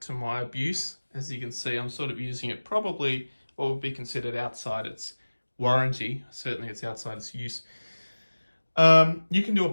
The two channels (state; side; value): inverted; both; correlation -1.00